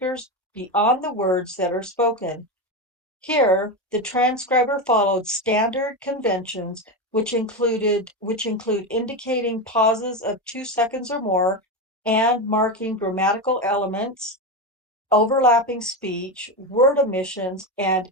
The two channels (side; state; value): both; normal; correlation 0.15